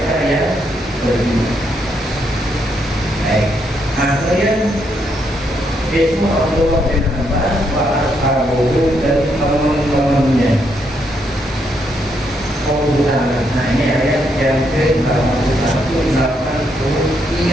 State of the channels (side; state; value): both; normal; correlation 0.76